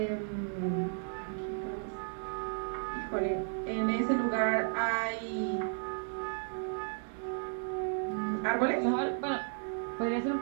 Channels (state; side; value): silent; left; 55 dB below the other